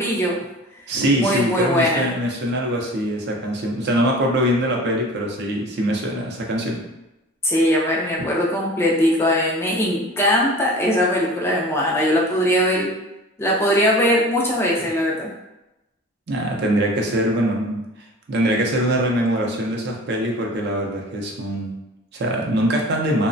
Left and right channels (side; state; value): both; normal; correlation 0.40